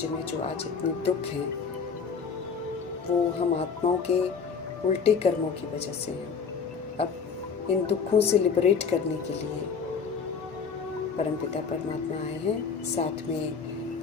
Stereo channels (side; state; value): right; quieter; 5.8 dB